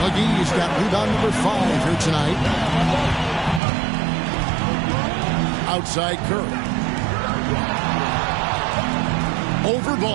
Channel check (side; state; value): left; drops out; at 3.6 s